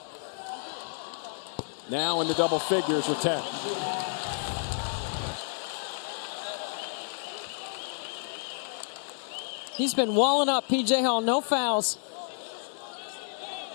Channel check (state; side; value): silent; right; 58 dB below the other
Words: Now in the double figures with 10. He's been walling up, P.J. Hall, no fouls.